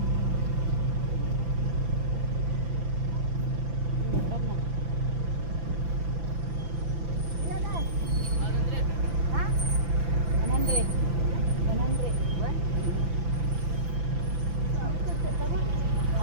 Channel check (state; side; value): late; left; 5.9 ms